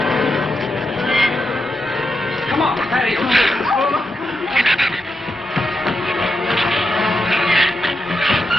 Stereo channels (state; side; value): normal; both; correlation 0.86